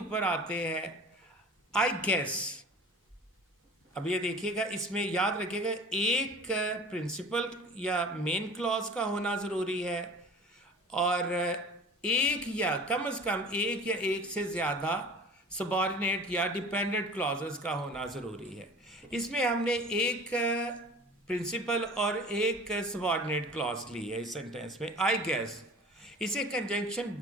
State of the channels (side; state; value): both; normal; correlation 0.41